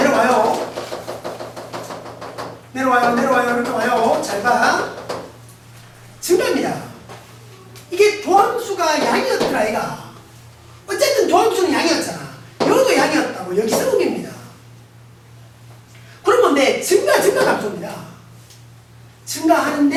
내려와요. 이렇게 와요. 잘 봐. 증가입니다. 이게 도함수가 아이가. 어쨌든 도함수는 양이었잖아. 여기도 양이었다고. 여기서 음입니다. 그러면 내 증가 감소입니다.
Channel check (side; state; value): both; identical; correlation 1.00